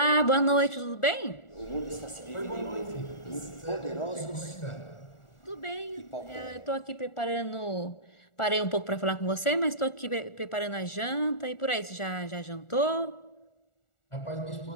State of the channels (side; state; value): right; late; 1.4 ms